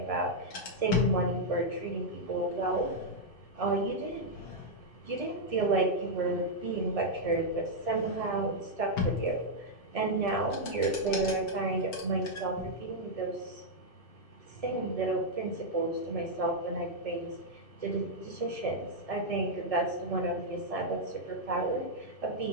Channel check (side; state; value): right; late; 2.6 ms